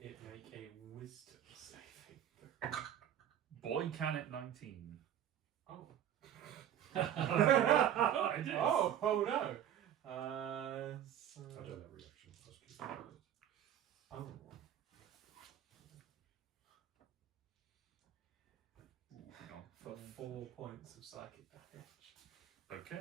it make a wisdom saving? Boy, can it 19. Oh. Oh, it is. Oh no. I don't have a reaction. I was curious. Oh. Ooh, hang on. For 4 points of psychic damage.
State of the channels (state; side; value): quieter; left; 10.4 dB